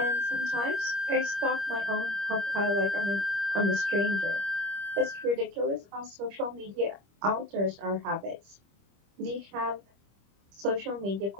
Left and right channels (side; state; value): left; late; 25 ms